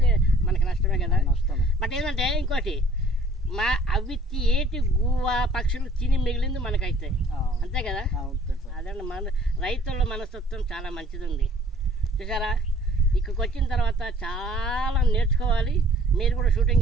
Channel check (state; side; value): normal; both; correlation 0.55